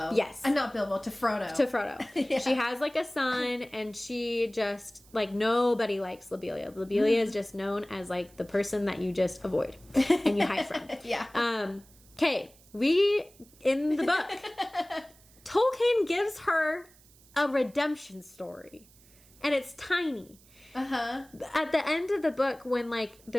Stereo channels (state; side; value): noise; right; hiss, 27 dB below the sound